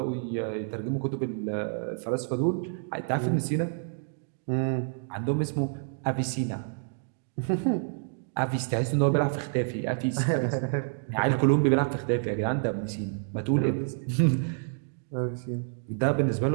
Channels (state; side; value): silent; left; digital silence